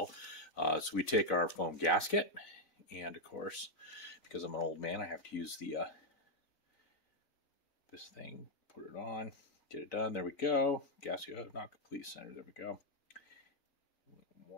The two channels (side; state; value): right; late; 4.0 ms